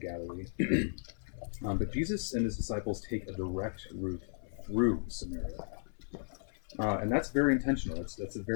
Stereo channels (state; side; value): silent; right; 54 dB below the other